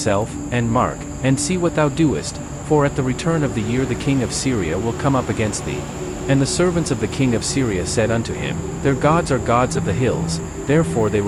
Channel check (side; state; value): both; identical; correlation 1.00